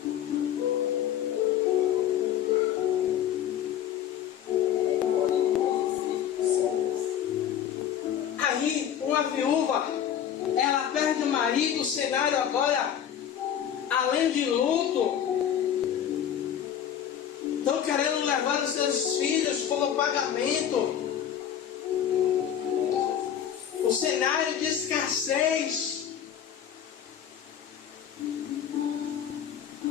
Aí uma viúva, ela perde o marido, o cenário agora, além de luto, estão querendo levar os seus filhos como pagamento. O cenário de escassez.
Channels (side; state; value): right; quieter; 9.6 dB